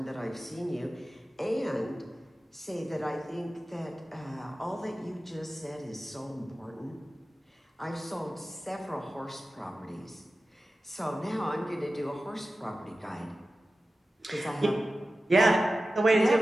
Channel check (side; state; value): both; normal; correlation 0.94